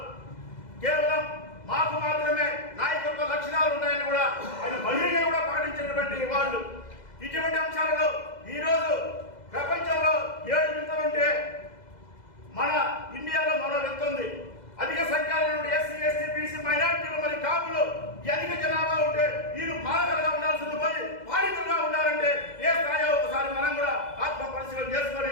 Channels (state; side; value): late; right; 2.0 ms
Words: కేవలం మాకు మాత్రమే నాయకత్వ లక్షణాలు ఉన్నాయని కూడా ఆయన బహిరంగంగా కూడా ప్రకటించినటువంటి వాళ్ళు. ఇటువంటి అంశాలలో ఈరోజు ప్రపంచంలో 7 వింతలుంటే మన ఇండియాలో మరో వింత ఉంది. అధిక సంఖ్యలో నుండి ఎస్సీ, ఎస్టీ, బీసీ, మైనారిటీలు మరి కాపులు అధిక జనాభా ఉంటే వీళ్ళు పాలకులుగా ఉండాల్సింది పోయి పాలితులుగా ఉండాలంటే ఏ స్థాయిలో ఒకసారి మనం కూడా ఆత్మ పరిశీలన చేసుకొని